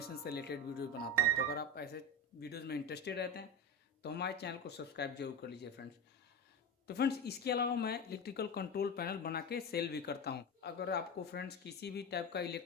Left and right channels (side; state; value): both; normal; correlation 0.23